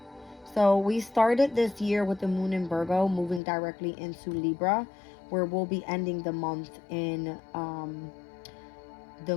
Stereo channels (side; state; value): right; drops out; at 3.4 s